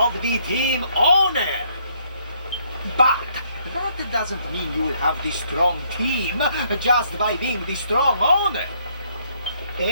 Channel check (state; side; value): inverted; both; correlation -0.68